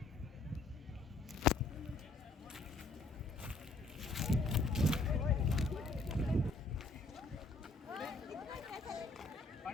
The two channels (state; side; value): quieter; right; 3.2 dB